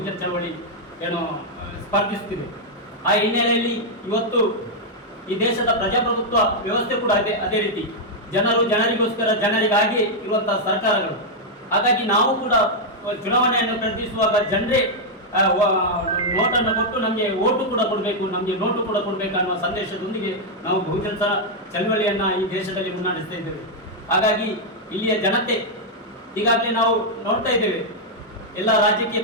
ಚಳವಳಿ ಸ್ಪರ್ಧಿಸುತ್ತಿದೆ. ಆ ಹಿನ್ನೆಲೆಯಲ್ಲಿ ಇವತ್ತು ಈ ದೇಶದ ಪ್ರಜಾಪ್ರಭುತ್ವ ವ್ಯವಸ್ಥೆ ಕೂಡ ಅದೇ ರೀತಿ ಜನರಿಗೋಸ್ಕರ ಜನರಿಗಾಗಿ ಇರುವಂತಹ ಸರ್ಕಾರಗಳು. ಹಾಗಾಗಿ ನಾವು ಕೂಡ ಚುನಾವಣೆಯನ್ನು ಪ್ರಯತ್ನಿಸುವಾಗ ಜನರೇ ನೋಟನ್ನು ಕೊಟ್ಟು ನಮಗೆ ಓಟು ಕೂಡ ಕೊಡಬೇಕು, ನಮಗೆ ನೋಟು ಕೂಡ ಕೊಡಬೇಕು ಅನ್ನುವ ಸಂದೇಶದೊಂದಿಗೆ ನಾವು ಬಹುಜನ ಚಳವಳಿಯನ್ನು ಈ ದೇಶದಲ್ಲಿ ಮುನ್ನಡೆಸ್ತಾ ಇದ್ದೇವೆ. ಹಾಗಾಗಿ ಇಲ್ಲಿಯ ಜನತೆ ಈಗಾಗಲೇ ನಾವು ನೋಡ್ತಾ ಇದ್ದೇವೆ, ಎಲ್ಲ ರಾಜಕೀಯ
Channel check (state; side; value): normal; both; correlation -0.03